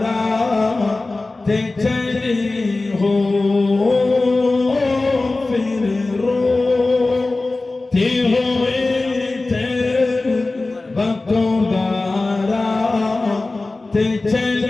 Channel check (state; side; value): quieter; right; 3.2 dB